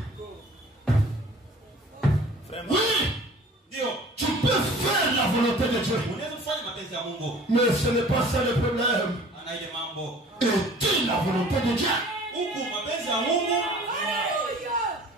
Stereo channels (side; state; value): both; normal; correlation 0.48